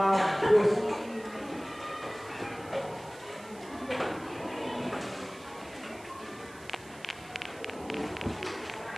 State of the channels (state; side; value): noise; right; hiss, 21 dB below the sound